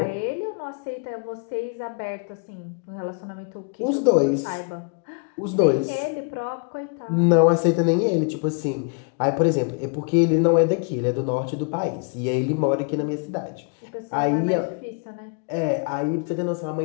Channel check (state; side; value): quieter; right; 38.5 dB